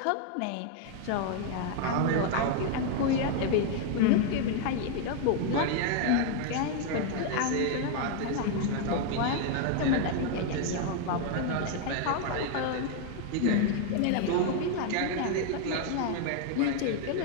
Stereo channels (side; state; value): both; different; correlation 0.00